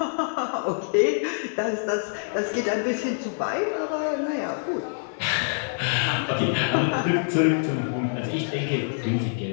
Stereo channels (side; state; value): right; silent; digital silence